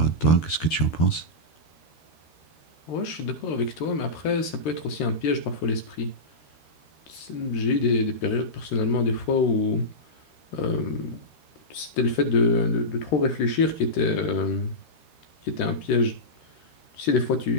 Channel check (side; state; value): right; late; 13 ms